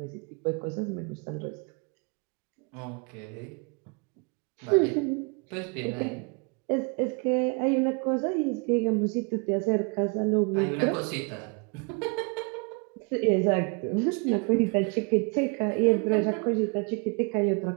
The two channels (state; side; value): quieter; left; 32.7 dB